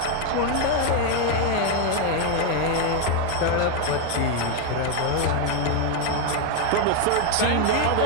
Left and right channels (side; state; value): both; different; correlation 0.01